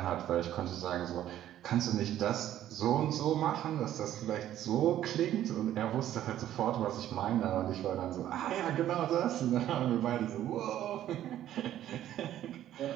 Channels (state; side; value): quieter; left; 12.2 dB